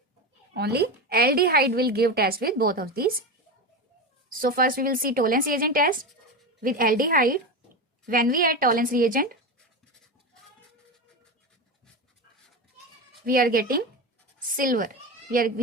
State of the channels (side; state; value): both; normal; correlation 0.20